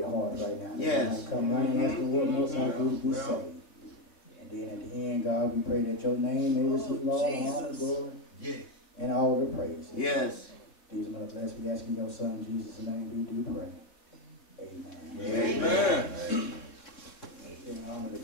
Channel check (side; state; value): right; late; 3.7 ms